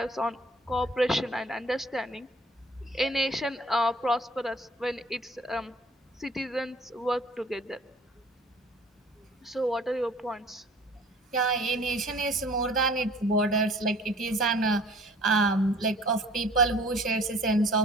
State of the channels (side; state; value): both; normal; correlation 0.51